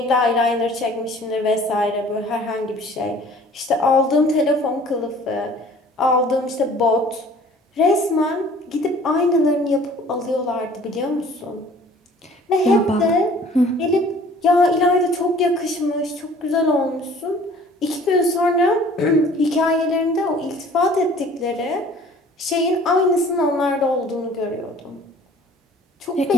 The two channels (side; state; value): both; normal; correlation 0.51